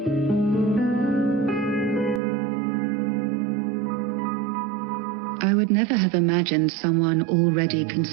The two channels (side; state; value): left; drops out; at 2.2 s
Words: I would never have imagined someone already